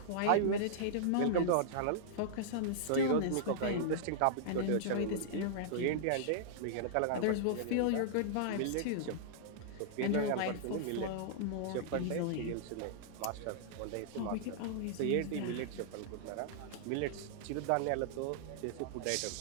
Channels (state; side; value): different; both; correlation -0.02